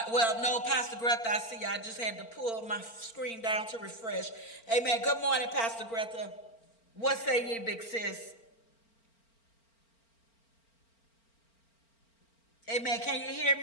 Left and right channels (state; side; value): late; right; 4.4 ms